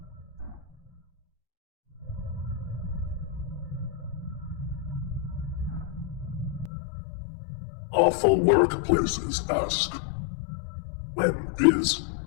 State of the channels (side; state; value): right; drops out; at 6.7 s